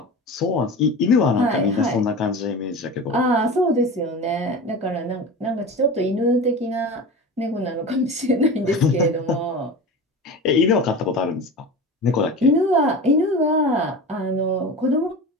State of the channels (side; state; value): both; normal; correlation 0.31